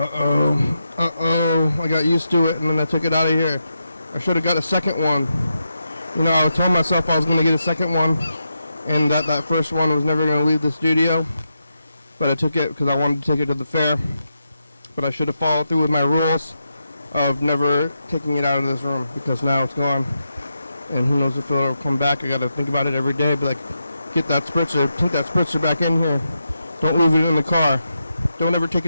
I got used to it and then I took it out of here. I should have got a second one. I was telling myself I was going to get a second one, and that first one was never going to leave the studio, but I took it because I wanted to take it to the fair. But I should have followed through with my rules of never taking it out of this room, because now it's gone. And who knows if it'll come back. I got to think about it every day, but like, get that spritzer, put that spritzer back in here. Don't leave it in the car. Don't ever take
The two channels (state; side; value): inverted; both; correlation -0.86